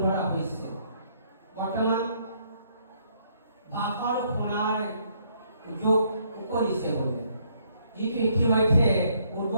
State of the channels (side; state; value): both; inverted; correlation -0.69